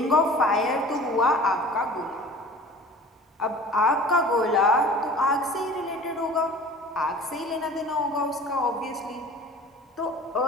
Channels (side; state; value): both; normal; correlation 0.43